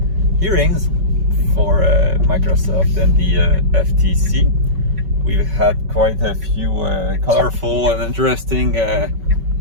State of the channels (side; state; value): left; late; 5.3 ms